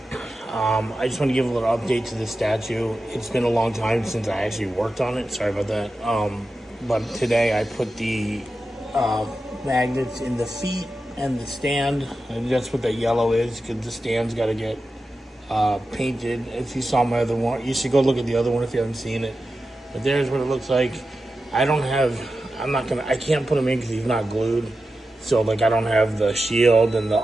I just want to give a little update to the statue. It's been a long time since I actually worked on it. Sorry about that. But today I put the magnets in the feet and the stand. And that's what that yellow is, because the stand's got to get painted. If you saw my other one, you should go look at the other one if you haven't seen it. But there's what it looks like. I can't put him in because he's not glued. So, like, I don't have the shield and the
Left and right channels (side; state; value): both; normal; correlation 0.91